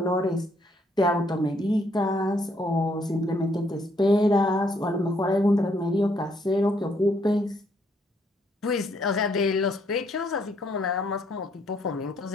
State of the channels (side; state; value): both; normal; correlation 0.70